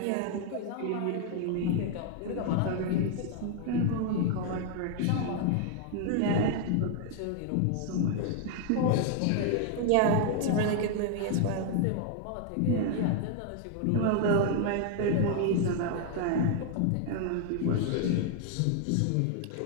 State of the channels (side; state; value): both; different; correlation 0.00